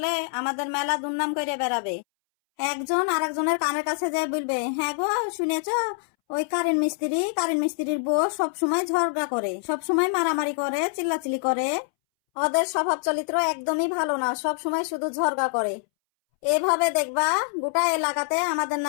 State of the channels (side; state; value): right; silent; 62 dB below the other